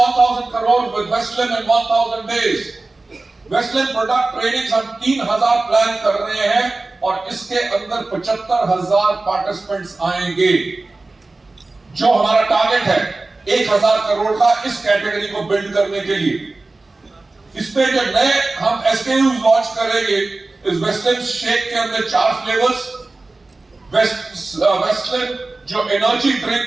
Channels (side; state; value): left; quieter; 3.3 dB